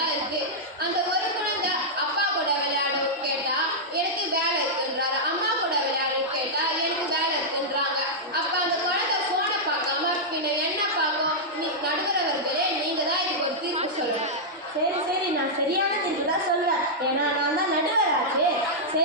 இருக்கு. அந்த ஒரு குழந்தை அப்பா கூட விளையாடவும் கேட்டா எனக்கு வேலை இருக்குன்றாரு, அம்மா கூட விளையாடவும் கேட்டா எனக்கு வேலை இருக்குன்றாங்க. அப்போ அந்த குழந்தை ஃபோனை பார்க்காம பின்ன என்ன பார்க்கும்? நடுவரவர்களே நீங்க தான் இதுக்கு ஒரு தீர்ப்பு சொல்லுங்க. சரி, நான் சரியான தீர்ப்பு தான் சொல்றேன். ஏன்னா நான் தான் நடுவராச்சு.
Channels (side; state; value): both; normal; correlation -0.07